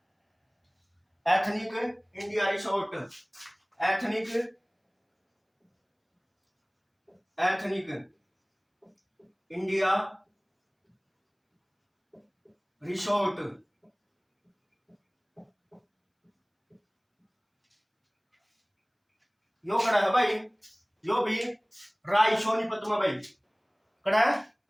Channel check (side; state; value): both; identical; correlation 1.00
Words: ethnic India resort, ethnic, ethnic India resort. यो कड़ा है भाई, यो भी राय सोनीपत में भाई, कड़ा है